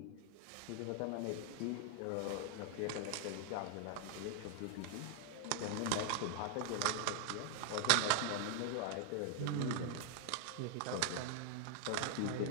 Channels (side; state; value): both; different; correlation 0.00